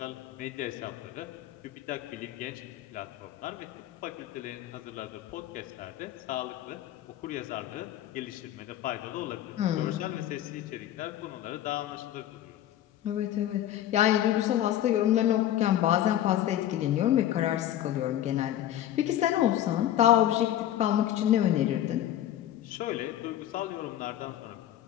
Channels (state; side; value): quieter; right; 12.3 dB